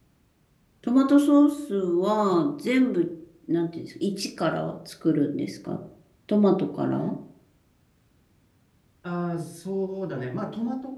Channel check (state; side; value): identical; both; correlation 1.00